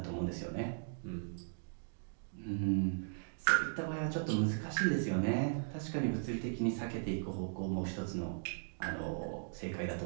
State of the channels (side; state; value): left; silent; digital silence